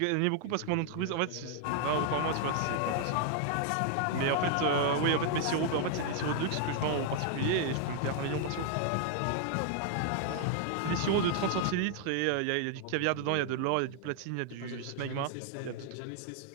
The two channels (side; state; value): both; different; correlation 0.00